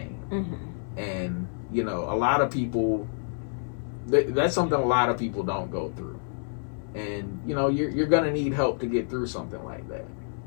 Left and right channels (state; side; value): silent; right; 59 dB below the other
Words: Mm-hmm. And, you know, a lot of people, that's something a lot of people don't go through. And, you know, you're going to need help to get through something like that.